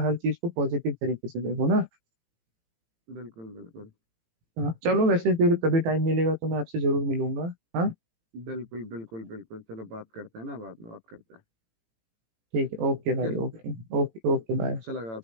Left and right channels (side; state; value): left; late; 18 ms